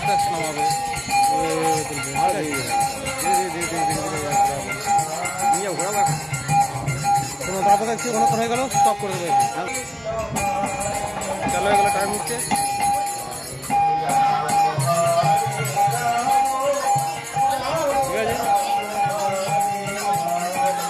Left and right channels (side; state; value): both; identical; correlation 1.00